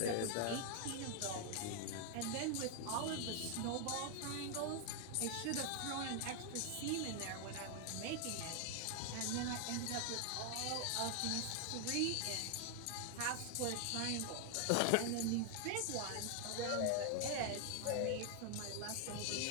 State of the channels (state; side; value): different; both; correlation 0.00